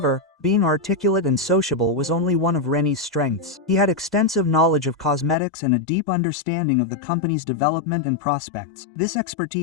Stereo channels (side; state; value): right; drops out; at 5.4 s